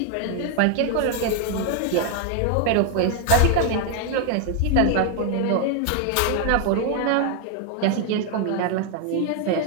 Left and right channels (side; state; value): both; different; correlation 0.00